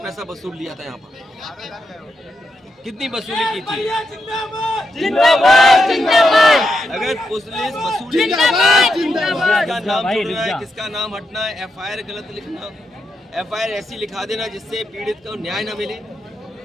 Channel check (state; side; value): normal; both; correlation 0.84